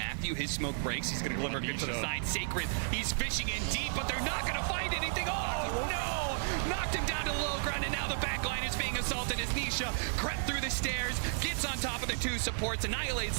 his smoke breaks. He's going to deliver good to the side. Sacred, he's fishing in deep, but they're not going to find anything. Oh, no! Knocked him down to the low ground, and now the back line is being assaulted as Nisha crept through the stairs, gets on top of the two supports, annihilates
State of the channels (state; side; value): silent; left; digital silence